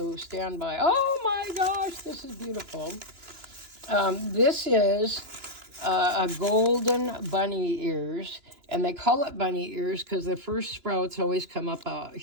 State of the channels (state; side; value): late; left; 2.9 ms